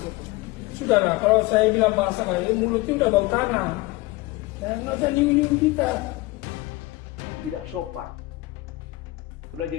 Sudahlah, kalau saya bilang bahasa kayak mulutnya udah bau tanah. Ya, nggak usah nyinggung-nyinggung kita. Tidak sopan. Sudah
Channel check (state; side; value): quieter; right; 20.8 dB